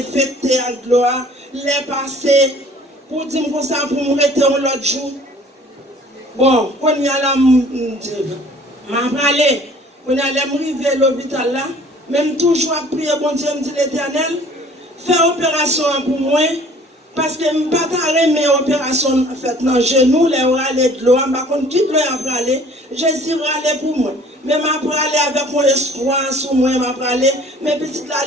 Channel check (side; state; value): both; normal; correlation 0.52